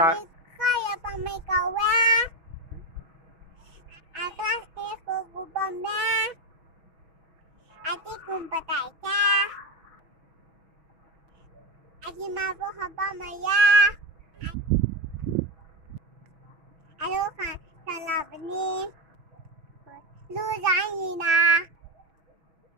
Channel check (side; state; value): left; late; 6.1 ms